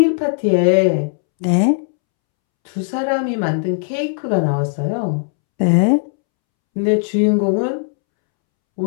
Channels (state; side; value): silent; right; 68 dB below the other